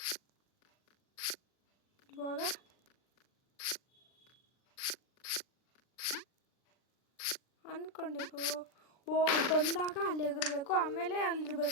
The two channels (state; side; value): late; right; 39 ms